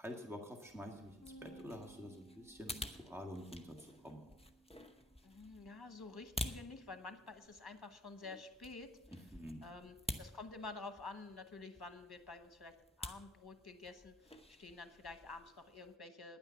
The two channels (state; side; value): normal; both; correlation 0.59